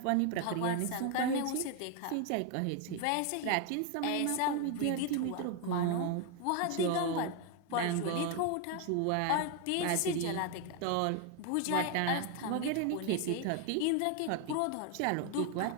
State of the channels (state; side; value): different; both; correlation 0.01